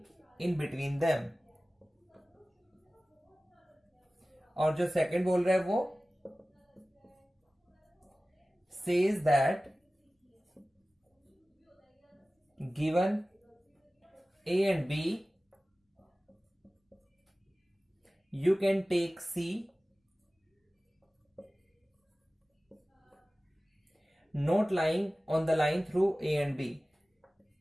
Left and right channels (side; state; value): both; normal; correlation 0.97